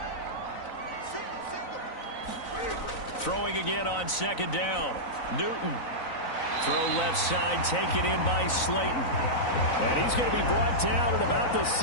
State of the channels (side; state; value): right; late; 3.9 ms